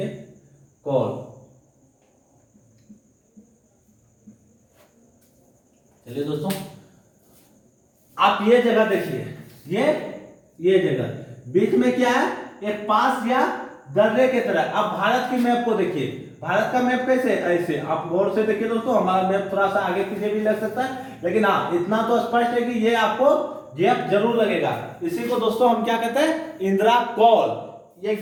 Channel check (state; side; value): identical; both; correlation 1.00